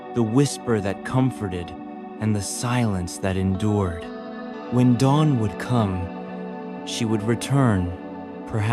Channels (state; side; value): identical; both; correlation 1.00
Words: the whisper that comforted, and the silence that endured. When dawn would come, she would return,